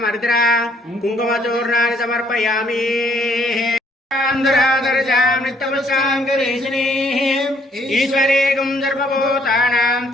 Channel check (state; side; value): normal; both; correlation 0.66